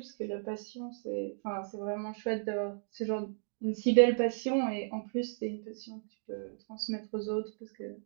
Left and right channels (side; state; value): left; silent; digital silence